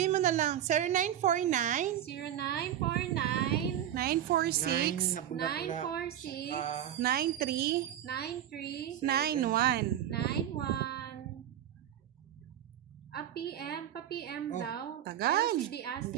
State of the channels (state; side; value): quieter; left; 11.0 dB